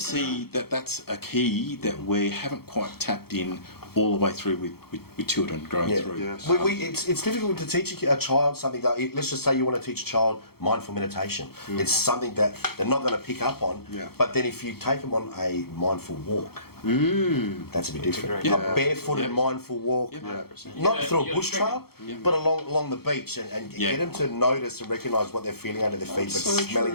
that that's a key that we haven't quite tapped in all the way through with children growing through. It's difficult to teach a child something that, let's just say you want to teach a child mindful meditation. It's something that they're not going to pick up on. But then if you take them on a mindful walk, That's a bit different. great- A barefooted, Yeah. mindful walk, 100%. not Yeah, through a you're bush trail, triggered. but along the beach, and get them to notice and recognise what they're feeling under their feet, That's but so smelling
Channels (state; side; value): late; right; 0.95 ms